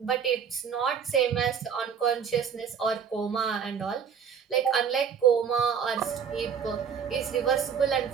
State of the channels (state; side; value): quieter; left; 7.2 dB